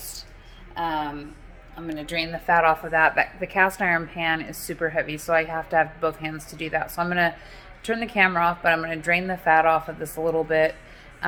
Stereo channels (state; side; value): identical; both; correlation 1.00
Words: I'm going to drain the fat off of that. The cast iron pan is super heavy, so I have to have both hands to do that. So I'm going to turn the camera off, but I'm going to drain the fat off of this a little bit.